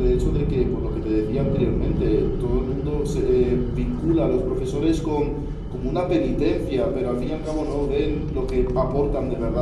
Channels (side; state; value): both; identical; correlation 1.00